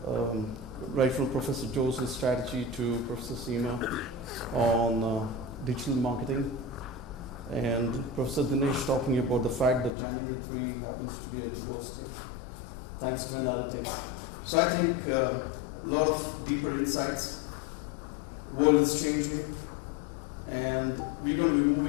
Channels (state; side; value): drops out; right; at 9.9 s